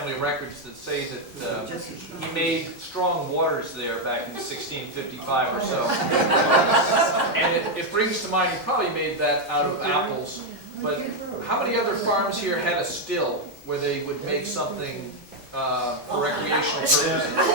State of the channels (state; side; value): late; left; 1.4 ms